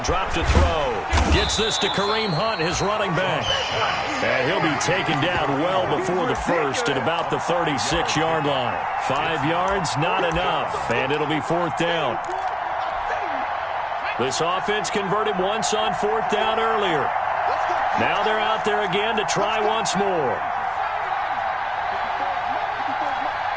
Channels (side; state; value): both; identical; correlation 1.00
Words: drop to throw. Gets this to Kareem Hunt, his running back. And he'll be taken down well before the first at about the 36-yard line. 5 yards, not enough, and it'll be fourth down. This offense converted once on fourth down earlier. Now they're out there again to try once more.